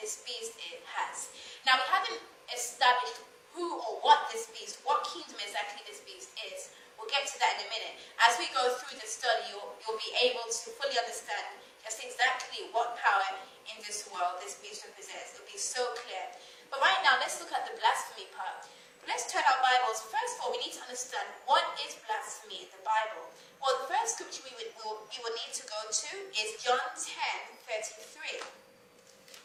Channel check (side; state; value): both; identical; correlation 1.00